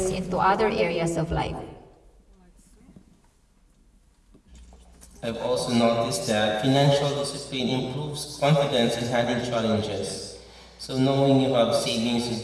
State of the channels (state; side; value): identical; both; correlation 1.00